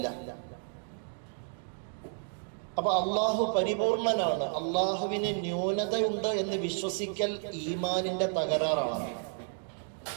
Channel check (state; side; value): silent; left; 57 dB below the other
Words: അപ്പൊ അള്ളാഹു പരിപൂർണനാണ്. അള്ളാഹുവിന് ന്യൂനതയുണ്ട് എന്ന് വിശ്വസിക്കൽ ഈമാനിന്റെ തകരാറാണ്.